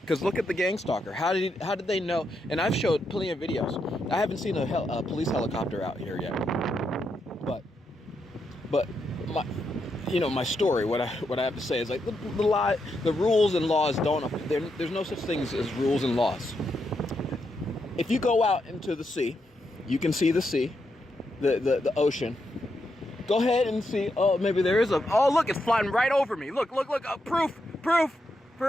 Because look at the Gangstalker. How did they know? And I've showed plenty of videos. I haven't seen a police helicopter out here yet. But my story, what I have to say is like the rules and laws don't. There's no such things as rules and laws. If you go out into the sea, you can see the sea, the ocean. Go ahead and see. Oh, maybe there is a. Oh, look, it's flying right over me. Look. Proof.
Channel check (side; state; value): both; normal; correlation 0.82